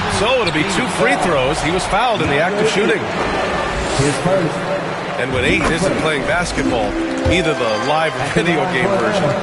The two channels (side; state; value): both; identical; correlation 1.00